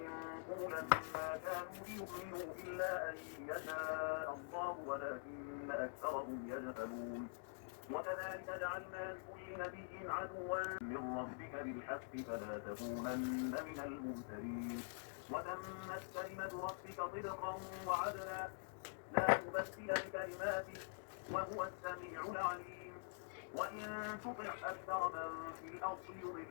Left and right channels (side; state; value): right; silent; digital silence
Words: قولا ما كانوا ليؤمنوا إلا أن يشاء الله ولكن أكثرهم يجهلون. وكذلك جعلنا لكل نبي عدوا من ربك بالحق فلا تكونن من الممترين. وتمت كلمة ربك صدقا وعدلا لا مبدل لكلماته وهو السميع العليم. وإن تطع أكثر من في الأرض